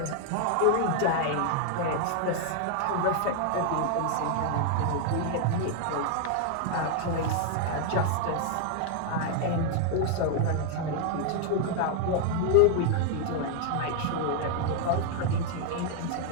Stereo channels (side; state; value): both; different; correlation 0.00